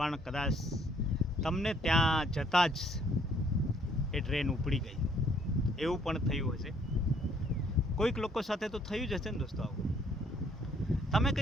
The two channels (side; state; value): both; normal; correlation 0.64